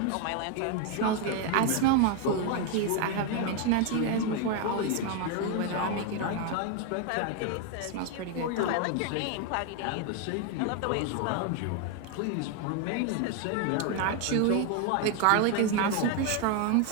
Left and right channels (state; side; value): different; both; correlation 0.01